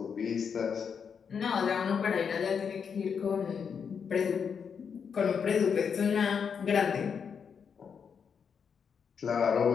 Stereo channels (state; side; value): quieter; right; 6.7 dB